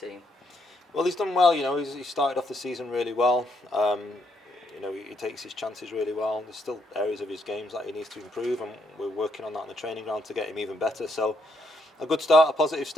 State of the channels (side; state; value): both; normal; correlation 0.75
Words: team? Well, he's done well. He started off the season really well. He takes his chances really well. There's still areas of his games that he needs to improve, and we're working on that on the training ground to get him even better. So, a good start, a positive